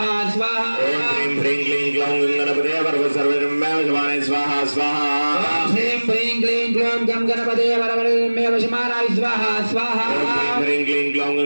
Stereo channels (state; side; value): inverted; both; correlation -1.00